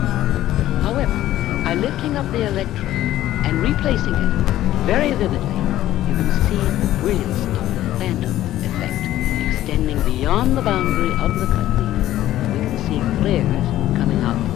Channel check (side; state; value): right; quieter; 13.8 dB